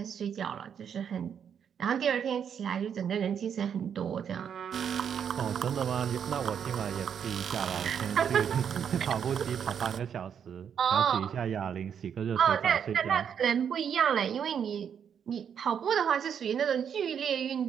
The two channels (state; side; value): quieter; left; 8.0 dB